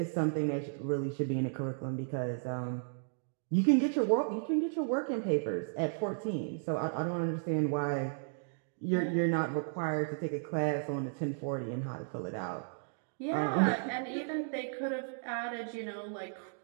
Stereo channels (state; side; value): silent; left; digital silence